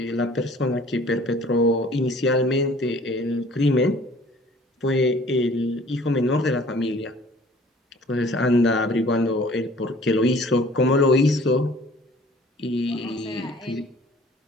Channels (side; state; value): both; normal; correlation 0.52